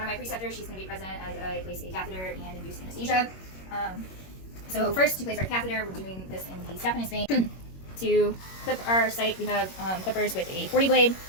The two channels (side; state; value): right; late; 21 ms